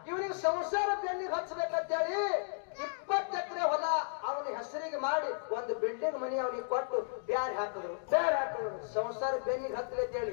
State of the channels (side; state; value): right; silent; digital silence